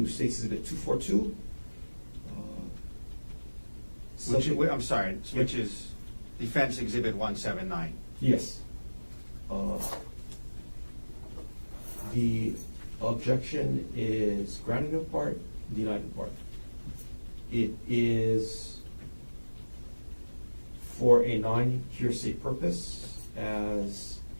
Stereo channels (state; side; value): inverted; both; correlation -1.00